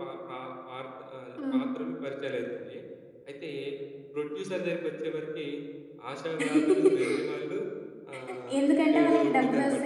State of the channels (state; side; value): identical; both; correlation 1.00